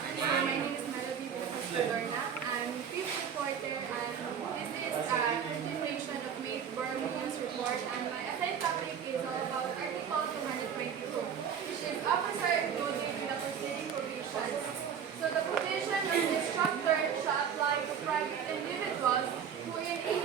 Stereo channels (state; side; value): quieter; left; 7.8 dB